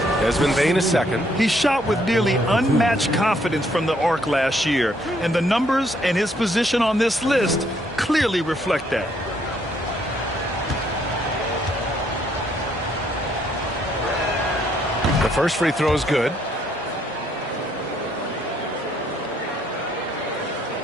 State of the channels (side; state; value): both; normal; correlation 0.69